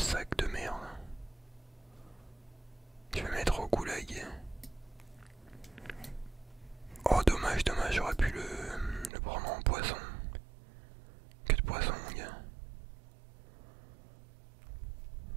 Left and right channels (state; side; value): drops out; left; at 9.1 s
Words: de merde? Je vais mettre au goulag. Oh dommage, j'aurais pu le prendre en poisson. Que de poisson mon gars.